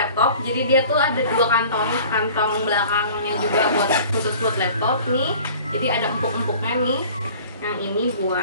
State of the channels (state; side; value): inverted; both; correlation -0.46